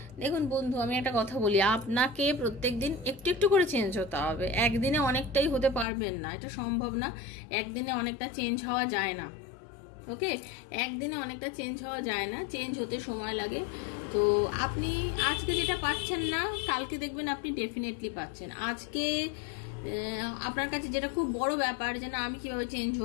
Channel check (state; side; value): drops out; right; at 5.9 s